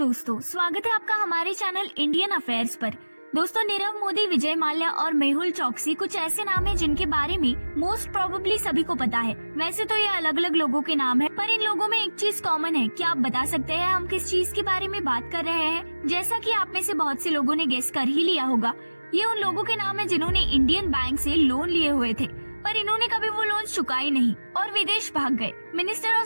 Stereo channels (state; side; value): inverted; both; correlation -1.00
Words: स्वागत है आपका हमारे चैनल इंडियन अफेयर्स पर। दोस्तों, नीरव मोदी, विजय माल्या और मेहुल चोकसी कुछ ऐसे नाम हैं जिनके बारे में मोस्ट प्रोबेबली सभी को पता है। वैसे तो ये अलग अलग लोगों के नाम है, पर इन लोगों में एक चीज कॉमन है। क्या आप बता सकते हैं हम किस चीज के बारे में बात कर रहे हैं? जैसा कि आप में से बहुत से लोगों ने गेस कर ही लिया होगा, ये उन लोगों के नाम है जिन्होंने इंडियन बैंक से लोन लिए हुए थे, पर इन्होंने कभी वो लोन चुकाए नहीं और विदेश भाग गए। Minister of